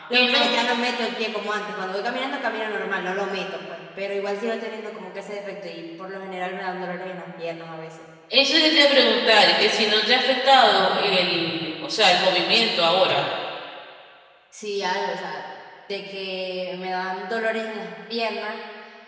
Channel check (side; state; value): both; identical; correlation 1.00